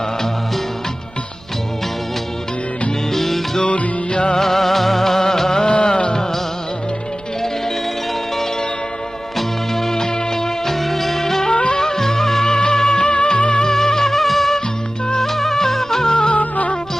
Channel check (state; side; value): noise; right; rumble, 24 dB below the sound